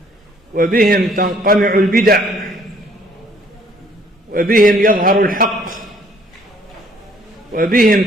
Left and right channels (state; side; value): normal; both; correlation 0.61